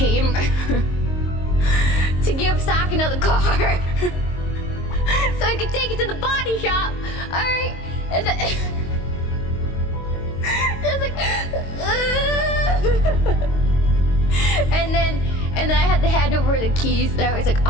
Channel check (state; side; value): late; right; 22 ms